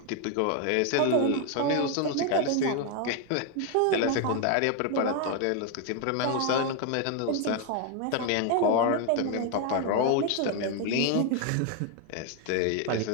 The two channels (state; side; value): different; both; correlation 0.01